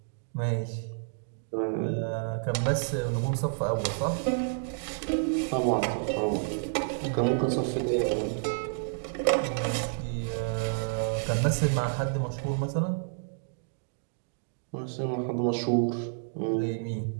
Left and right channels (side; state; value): left; silent; digital silence